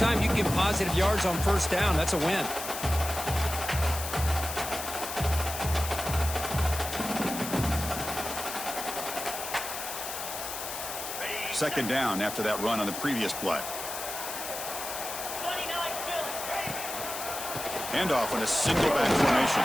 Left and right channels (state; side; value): noise; left; hiss, 7 dB below the sound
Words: you can get positive yards on 1st down, that's a win. Second down after that run on the previous play. Handoff in a single back formation.